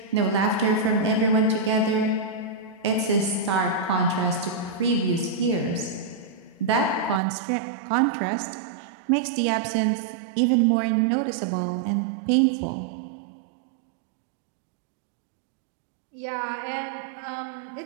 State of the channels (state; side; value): drops out; left; at 7.2 s